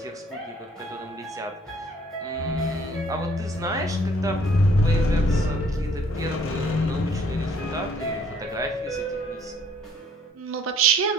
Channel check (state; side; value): normal; both; correlation 0.60